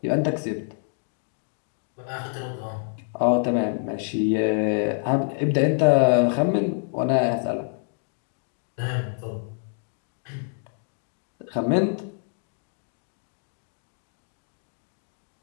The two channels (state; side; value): silent; right; digital silence